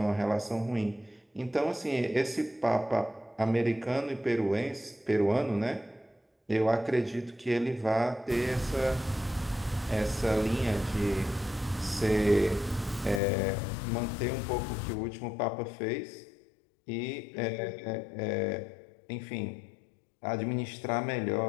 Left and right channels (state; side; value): drops out; right; at 13.2 s